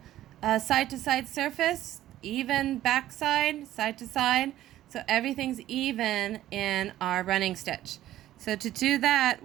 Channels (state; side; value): quieter; left; 13.6 dB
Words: side to side surface, even back side to side. So everything's even in our running stitch. So to do that,